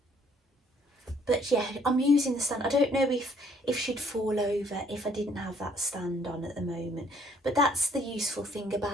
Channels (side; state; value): both; normal; correlation 0.63